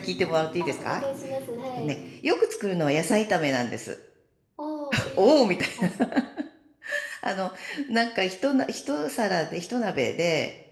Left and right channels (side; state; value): both; identical; correlation 1.00